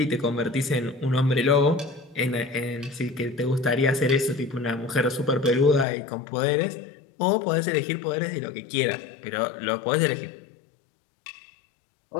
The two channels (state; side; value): drops out; right; at 5.9 s